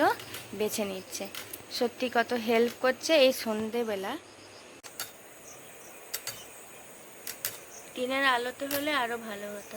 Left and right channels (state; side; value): identical; both; correlation 1.00